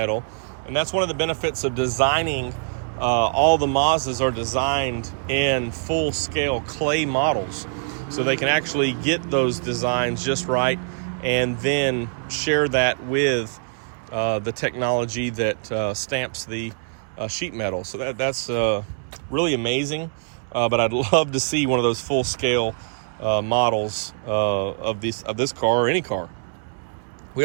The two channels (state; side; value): silent; left; 63 dB below the other